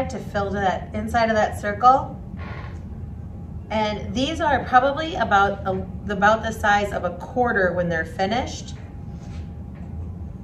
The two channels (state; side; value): identical; both; correlation 1.00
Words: to fill to that inside of that circle. And these are probably about the size of a quarter when they're finished.